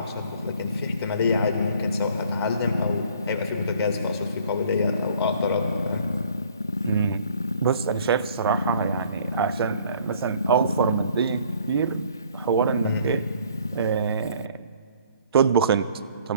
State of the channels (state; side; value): inverted; both; correlation -0.57